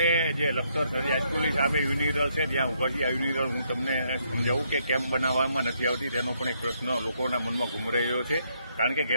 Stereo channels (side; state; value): both; inverted; correlation -0.73